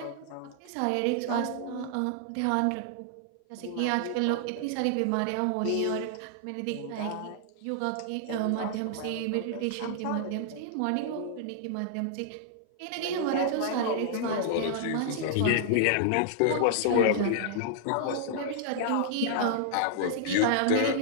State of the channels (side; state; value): both; different; correlation -0.01